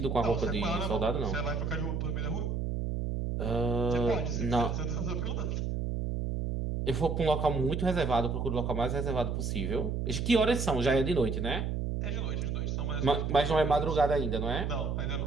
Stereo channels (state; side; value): noise; right; hum, 1 dB below the sound